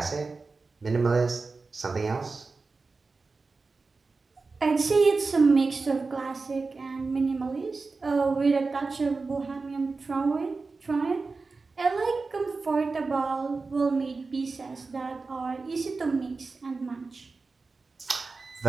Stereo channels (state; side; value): quieter; left; 4.0 dB